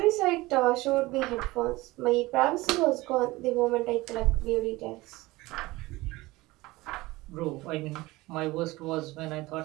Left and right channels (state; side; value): quieter; left; 20.1 dB